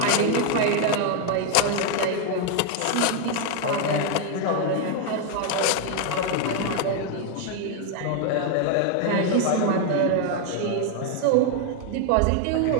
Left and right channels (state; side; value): different; both; correlation 0.01